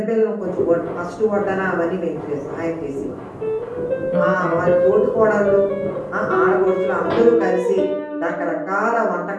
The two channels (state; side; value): identical; both; correlation 1.00